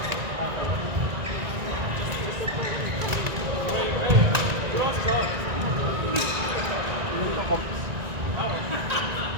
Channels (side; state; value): left; late; 1.9 ms